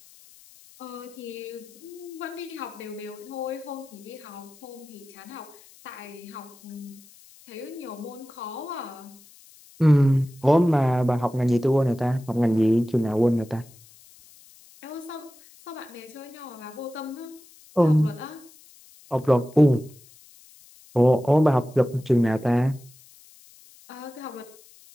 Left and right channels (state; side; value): noise; left; hiss, 24 dB below the sound